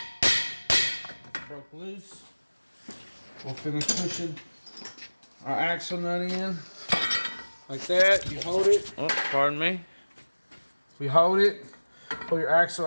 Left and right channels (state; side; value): inverted; both; correlation -1.00